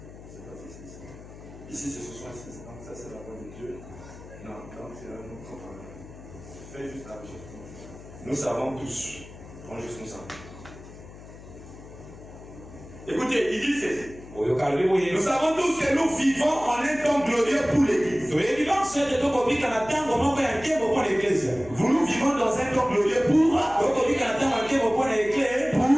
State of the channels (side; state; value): left; noise; hum, 17 dB below the sound